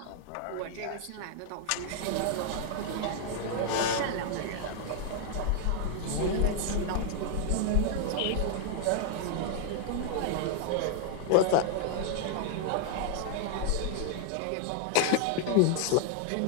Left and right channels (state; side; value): different; both; correlation 0.00